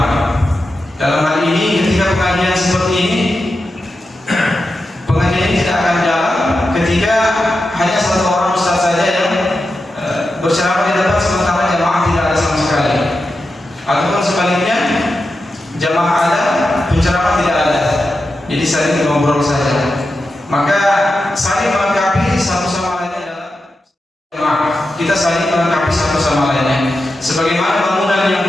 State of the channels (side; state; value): both; normal; correlation 0.90